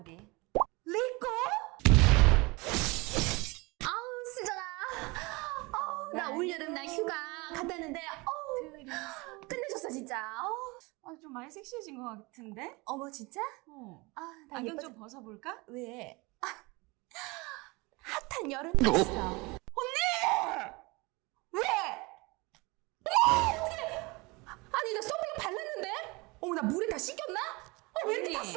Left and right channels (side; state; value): left; quieter; 25.3 dB